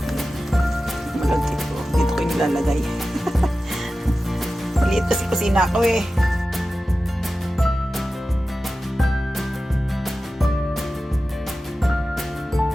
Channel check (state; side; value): normal; both; correlation 0.94